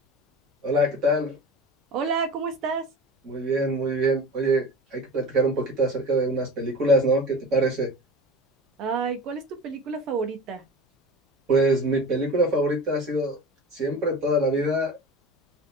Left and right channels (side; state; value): both; normal; correlation 0.34